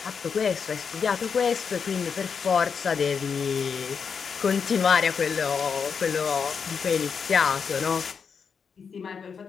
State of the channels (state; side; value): quieter; right; 6.2 dB